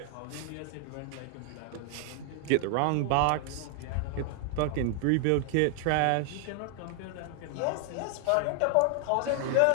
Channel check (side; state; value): both; different; correlation 0.00